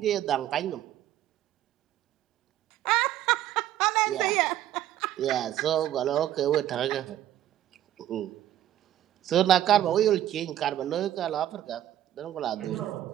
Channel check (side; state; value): left; quieter; 12.3 dB